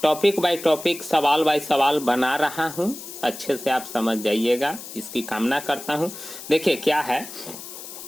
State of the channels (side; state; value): left; noise; hiss, 12 dB below the sound